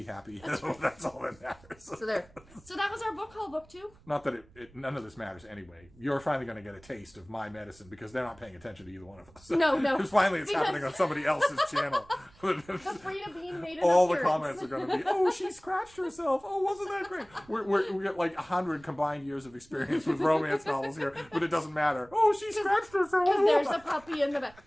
happy, that's all that matters. So there. So that was our book haul, booktube. Not that none of this matters anyway. You're finally going to get a taste of my medicine because they're not paying attention to either one of us. No. Because finally it's happening on somebody else's channel. The Freida bean made an All the appearance. comments are going to be, oh, she scratched herself. Oh, wasn't that great? We got like 100 combined years of experience with romance novels here, but it doesn't matter. Oh, she scratched herself. Because there's a puppy in the back.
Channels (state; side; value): noise; right; rumble, 26 dB below the sound